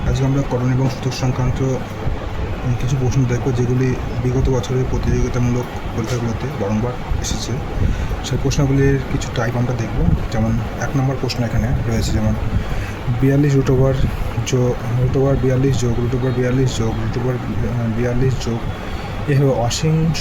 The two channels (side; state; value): both; identical; correlation 1.00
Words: আজকে আমরা করণ এবং সূচক সংক্রান্ত কিছু প্রশ্ন দেখব, যেগুলি বিগত বছরের প্রতিযোগিতামূলক পরীক্ষাগুলোতে বারংবার এসেছে। সেই প্রশ্নগুলির কিছু টাইপ আমরা দেখব। যেমন 1 নম্বর প্রশ্ন এখানে রয়েছে, যেমন 42 রুট ওভার 42 যোগ রুট ওভার 42 যোগ রুট ওভার 42 যোগ এভাবে